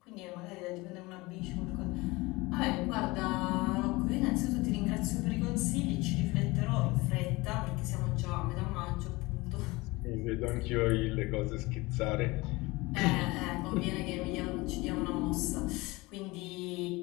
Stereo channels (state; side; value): quieter; right; 22.4 dB